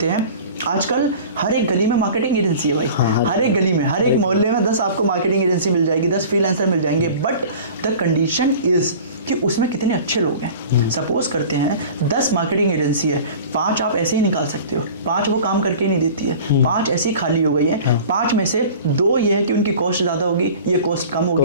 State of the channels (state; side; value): inverted; both; correlation -0.41